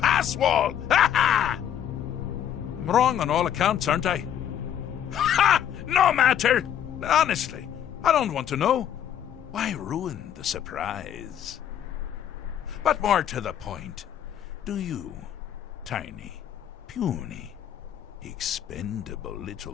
I'm wrong on all accounts, aren't I? No matter! Honestly, I don't want to know. Why ruin the surprise? But more to the point, do you, tiny, puny, expendable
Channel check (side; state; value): right; quieter; 9.9 dB